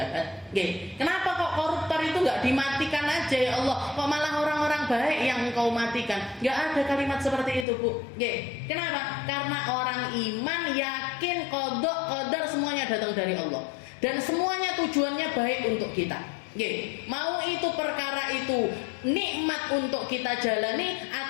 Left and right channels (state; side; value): drops out; right; at 7.7 s